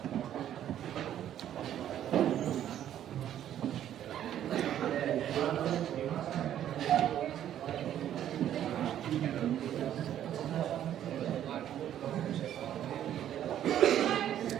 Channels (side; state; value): left; quieter; 11.0 dB